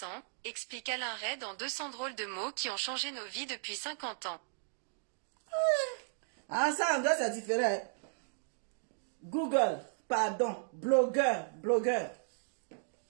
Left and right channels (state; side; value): silent; left; digital silence